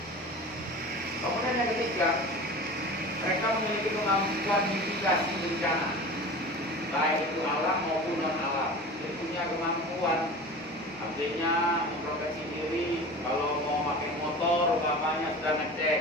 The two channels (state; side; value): normal; both; correlation 0.35